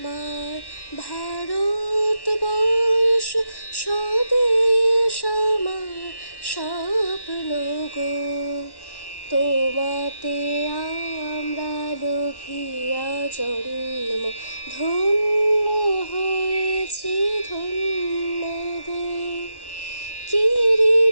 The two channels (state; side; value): late; right; 1.1 ms